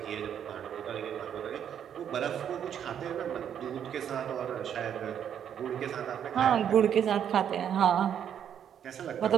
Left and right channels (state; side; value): quieter; left; 9.0 dB